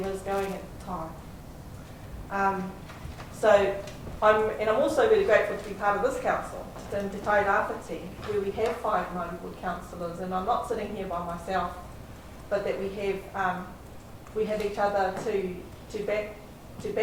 is going at the time. I'm also really grateful to be part of this council, Te Tai Rāwhiti, where we have 5 Māori Ward councillors, and I'm not sitting here by myself, but that we have each other to back,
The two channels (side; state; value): both; identical; correlation 1.00